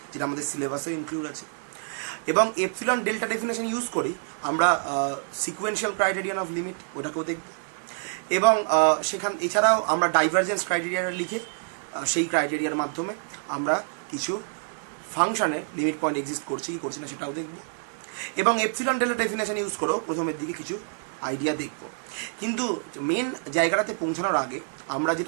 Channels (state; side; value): silent; left; 60 dB below the other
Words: যেটা আমাদের সিলেবাসে ইনক্লুড আছে। এবং এপসিলন ডেল্টা ডেফিনেশন ইউজ করি আমরা সিকুয়েন্সিয়াল ক্রাইটেরিয়ান অফ লিমিট ওটাকেও দেখব, এবং এছাড়াও আমরা ডাইভারজেন্স ক্রাইটেরিয়াটা লিখে সেই ক্রাইটেরিয়ার মাধ্যমে আমরা কিছু ফাংশনের লিমিট পয়েন্ট এক্সিস্ট করছে কি করছে না সেটাও দেখব, এবং এপসিলন ডেল্টা ডেফিনেশন ইউজ করেও প্রথমের দিকে কিছু আইডিয়া দেখব। কিন্তু মেন জায়গাটাতে পৌঁছানোর আগে আমরা